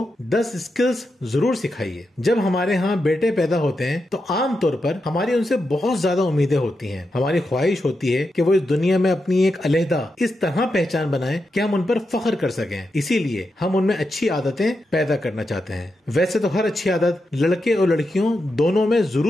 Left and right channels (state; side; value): normal; both; correlation 0.87